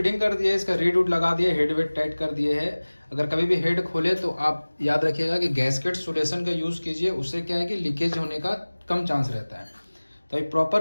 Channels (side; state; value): both; inverted; correlation -1.00